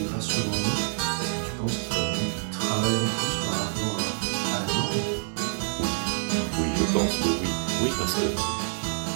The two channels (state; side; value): silent; left; digital silence